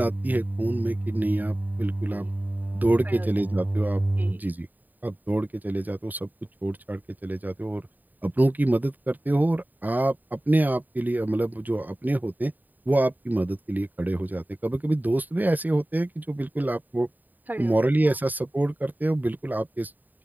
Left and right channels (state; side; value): late; left; 0.086 ms